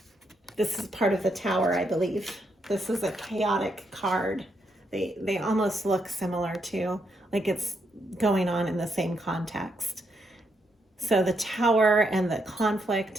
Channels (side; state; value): both; normal; correlation 0.78